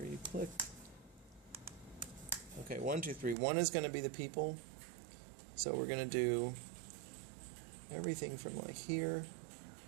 you click. Okay, 1, 2, 3. 1 is going to be the people. So we're going to do everything from like here.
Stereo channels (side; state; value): left; drops out; at 3.4 s